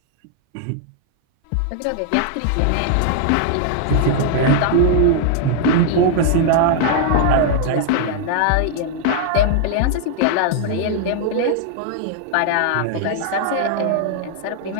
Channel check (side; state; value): both; different; correlation 0.00